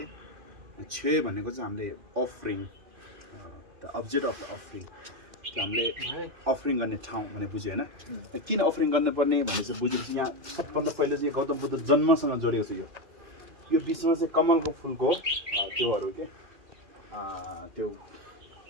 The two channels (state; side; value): late; left; 2.4 ms